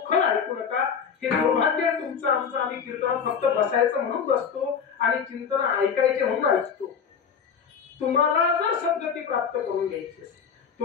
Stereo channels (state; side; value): quieter; right; 6.8 dB